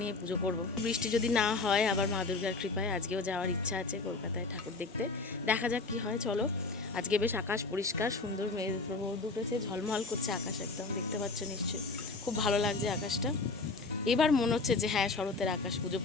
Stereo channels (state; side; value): quieter; right; 3.8 dB